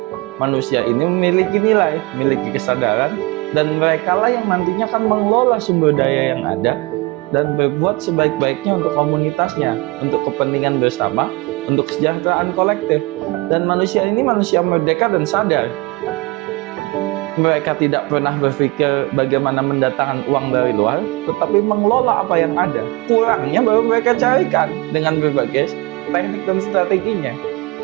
Manusia ini memiliki nilai, memiliki kesadaran, dan merekalah yang nantinya akan mengelola sumber daya yang ada dan berbuat sebaik-baiknya untuk komunitasnya, untuk kepentingan bersama, untuk kesejahteraan kolektif. Dan manusia ini manusia merdeka dan sadar. Mereka tidak pernah berpikir bagaimana mendatangkan uang dari luar, tetapi mengelola apa yang ada. Kurangnya baru mereka carikan dengan berbagai teknik dan strateginya.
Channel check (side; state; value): left; quieter; 23.9 dB